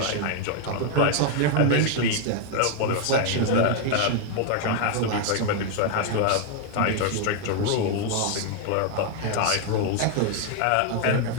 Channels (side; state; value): both; different; correlation 0.00